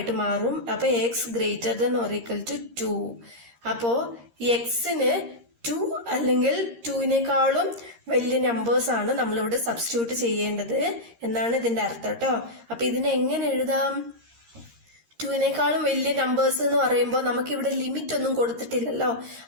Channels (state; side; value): late; left; 13 ms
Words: മാറും. അപ്പൊ x greater than or equal to 2. അപ്പോ എക്സിന് 2 അല്ലെങ്കിൽ 2-നേക്കാളും വലിയ നമ്പേഴ്സ് ആണ് നമ്മളിവിടെ സബ്സ്റ്റിറ്റ്യൂട്ട് ചെയ്യേണ്ടത് എന്നാണ് ഇതിന്റെ അർത്ഥം കേട്ടോ. അപ്പൊ ഇതിനെ എങ്ങനെ എഴുതാം? 2-നേക്കാളും വലിയ നമ്പേഴ്സ് എന്ന് പറയുമ്പോൾ നമുക്കിവിടെ ലിമിറ്റ് ഒന്നും കൊടുത്തിട്ടില്ലല്ലോ.